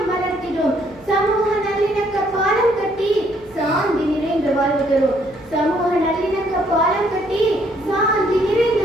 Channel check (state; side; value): noise; right; hum, 27 dB below the sound